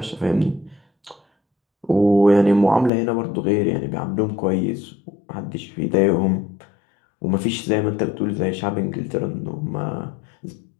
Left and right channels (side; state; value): right; drops out; at 2.9 s